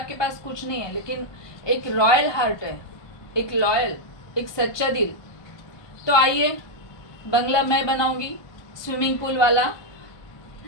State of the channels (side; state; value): right; late; 1.2 ms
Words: पास कुछ नहीं है लेकिन एक रॉयल हार्ट है, एक लॉयल, एक सच्चा दिल, तो आइए, बंगला मैं बनाऊंगी, स्विमिंग पूल वाला।